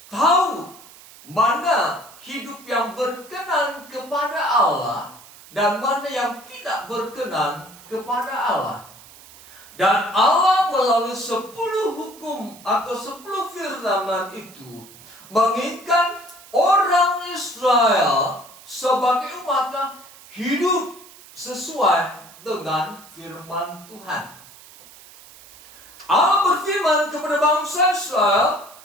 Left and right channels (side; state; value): right; noise; hiss, 21 dB below the sound